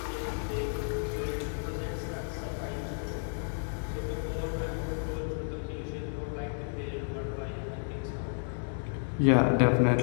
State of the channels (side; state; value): right; silent; 57 dB below the other